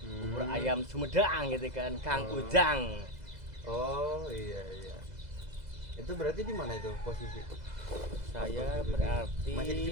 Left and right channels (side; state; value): left; late; 2.0 ms